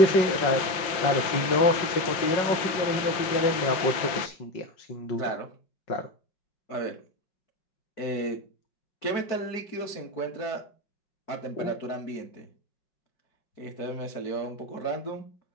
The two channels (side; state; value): right; late; 5.7 ms